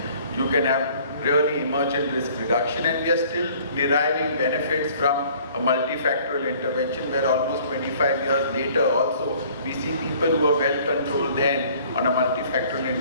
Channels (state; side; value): inverted; both; correlation -0.55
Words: you can have really emergent risk reduction, and we are still deriving benefits from a multifactorial intervention where almost 25 years later also we see people who are well controlled then on a multifactorial